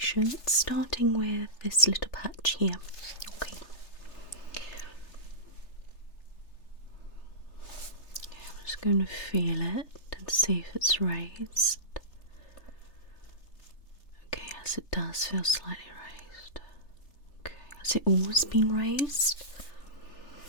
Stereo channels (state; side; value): late; right; 3.3 ms